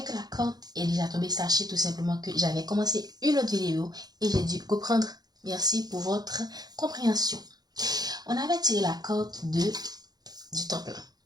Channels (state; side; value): late; left; 0.19 ms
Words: que la corde est déjà tombée, sachez tout simplement que j'avais commencé une autre vidéo et j'ai dû reprendre. Merci pour votre compréhension. On avait tiré la corde du temps